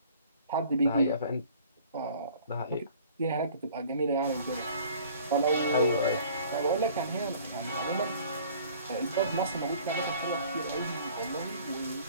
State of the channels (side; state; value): both; inverted; correlation -0.51